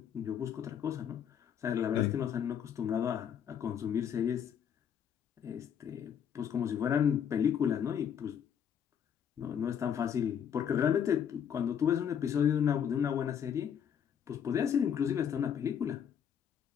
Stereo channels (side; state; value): right; quieter; 8.4 dB